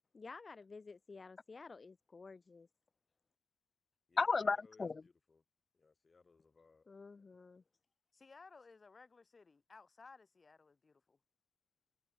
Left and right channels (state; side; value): quieter; right; 3.9 dB